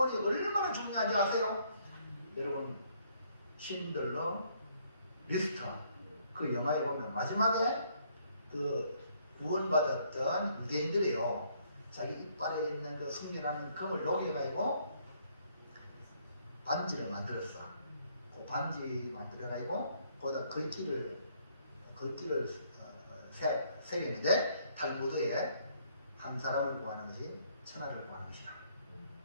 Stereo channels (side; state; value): both; inverted; correlation -0.67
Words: 얼마나 중요한지 아세요? 여러분 신들러 리스터 그 영화에 보면 마지막에 그 구원받았던 유대인들이요 자기 이빨에 있는 그 숙련하는 금을 녹여가지고 반지를 만들었어. 그 반지 만들어가지고 거기다 글귀를 새겼는데 탈무드에 한 사람을 구하는 것이 천하를 구하는 것이다.